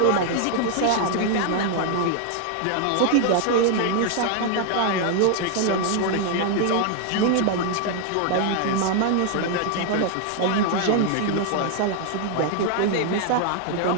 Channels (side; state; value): both; different; correlation 0.00